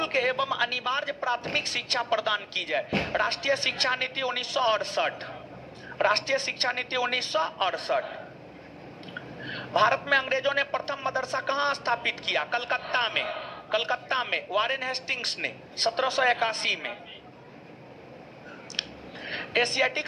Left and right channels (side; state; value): both; identical; correlation 1.00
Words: एवं अनिवार्य प्राथमिक शिक्षा प्रदान की जाए? राष्ट्रीय शिक्षा नीति 1968। राष्ट्रीय शिक्षा नीति 1968। भारत में अंग्रेजों ने प्रथम मदरसा कहां स्थापित किया? कलकत्ता में। कलकत्ता में वारेन हेस्टिंग्स ने 1781 में। एशियाटिक